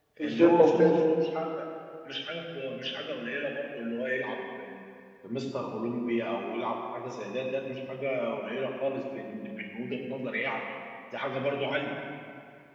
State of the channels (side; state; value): both; identical; correlation 1.00